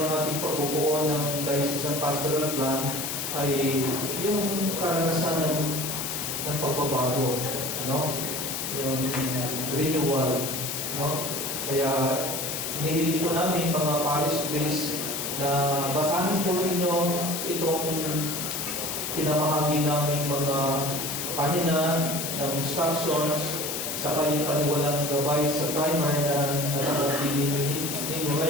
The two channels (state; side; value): noise; left; hiss, 3 dB below the sound